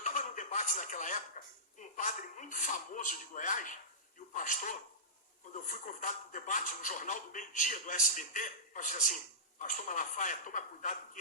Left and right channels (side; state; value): both; normal; correlation -0.20